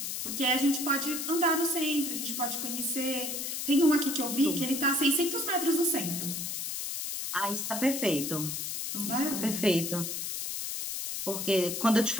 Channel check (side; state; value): left; noise; hiss, 4 dB below the sound